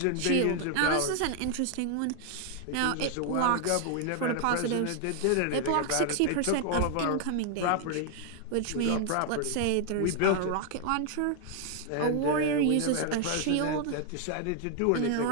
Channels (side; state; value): both; different; correlation 0.00